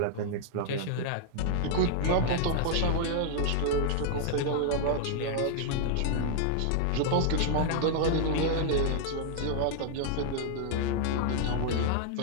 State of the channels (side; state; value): both; different; correlation -0.01